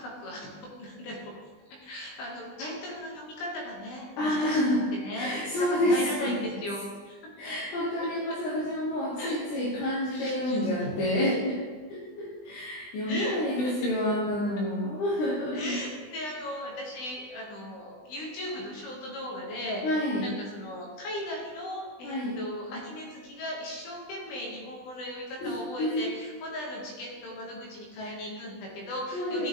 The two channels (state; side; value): late; right; 20 ms